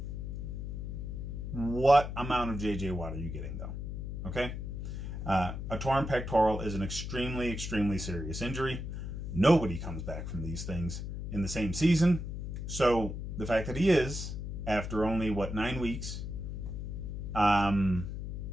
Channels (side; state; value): left; noise; hum, 5 dB below the sound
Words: What amount of J.J. Watt are you getting, though? Okay? A torn pectoral is an extremely, extremely serious injury. Nobody comes back from these things in the same season. So the fact that he is, after only, 9 weeks, that